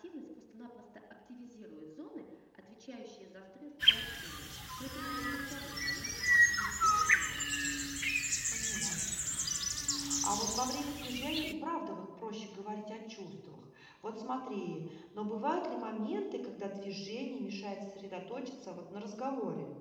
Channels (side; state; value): both; identical; correlation 1.00